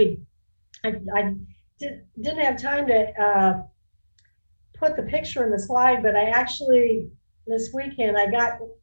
I didn't have time to put the picture in the slide, but I actually, this weekend, I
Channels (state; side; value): inverted; both; correlation -1.00